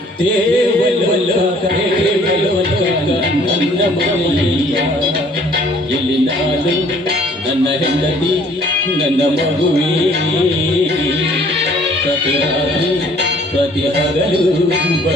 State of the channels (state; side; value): normal; both; correlation 0.57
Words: ದೇವಲೋಕ ನನ್ನ ಮನೆಯ ಇಲ್ಲಿ ನಾನು ನನ್ನ ಹೆಂಡತಿ ನನ್ನ ಮಗುವೇ ಪ್ರತಿ ರಾತ್ರಿ ಪ್ರತಿ ಹಗಲು